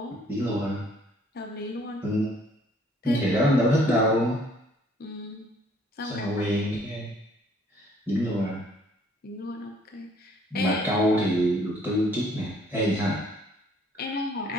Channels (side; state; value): both; normal; correlation 0.61